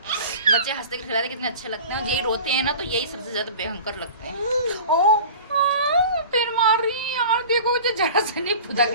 हंसते खिलाते कितने अच्छे लगते हैं, और यही रोते हैं ना तो यही सबसे ज्यादा भयंकर लगते हैं। फिर मार रही है यार, देखो मुझे जरा सा नहीं पुदा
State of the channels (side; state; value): both; inverted; correlation -0.39